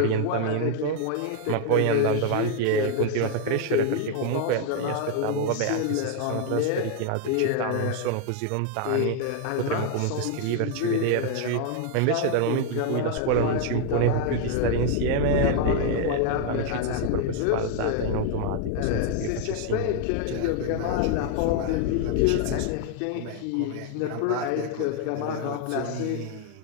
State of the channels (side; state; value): both; different; correlation 0.00